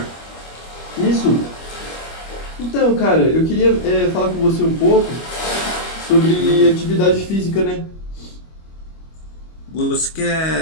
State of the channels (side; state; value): right; late; 25 ms